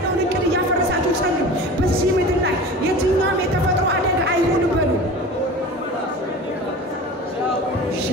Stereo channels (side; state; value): both; normal; correlation 0.36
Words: እቅድ እያፈረሳችሁ ጸልዩ። በዚህ ምድር ላይ የትኛውም የተፈጥሮ አደጋ አይሁን በሉ።